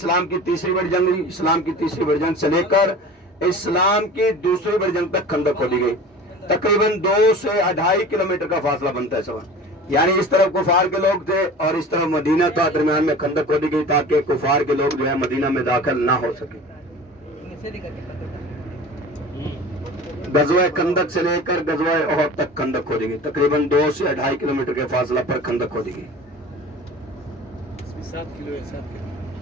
की तीसरी बड़ी जंग हुई, इस्लाम की तीसरी बड़ी जंग से लेकर इस्लाम की दूसरी बड़ी जंग तक खंदक खोदी गई। तकरीबन 2 से 2.5 किलोमीटर का फासला बनता है सवाल। यानी इस तरफ कुफार के लोग थे और इस तरफ मदीना था, दरमियान में खंदक खोदी गई ताकि कुफार के लोग जो है मदीना में दाखिल ना हो सके। गज़वा खंदक से लेकर गज़वा ओहद तक खंदक खोदी गई। तकरीबन 2 से 2.5 किलोमीटर के फासला पर खंदक खोदी गई। 7 किलो है, 7 किलो।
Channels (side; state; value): both; normal; correlation 0.38